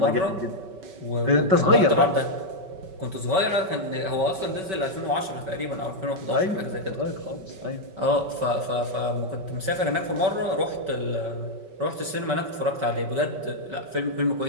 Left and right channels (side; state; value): left; late; 5.3 ms